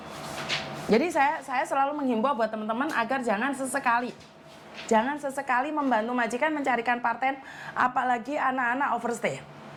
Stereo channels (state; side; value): identical; both; correlation 1.00